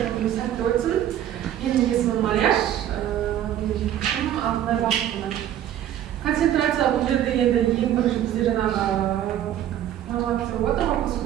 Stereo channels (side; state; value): left; quieter; 11.3 dB